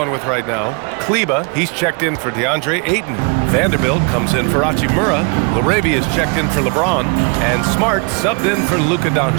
with right now. Kleba, he's checked in for DeAndre Ayton. Vanderbilt comes in for Hachimura. Laravia is checked in for LeBron. And Smart subbed in for Luka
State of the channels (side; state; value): left; quieter; 34.9 dB